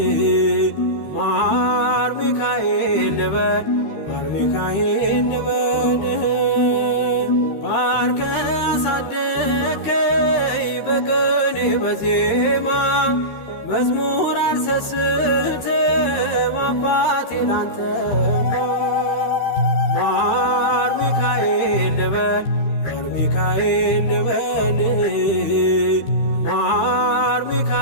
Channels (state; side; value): late; right; 13 ms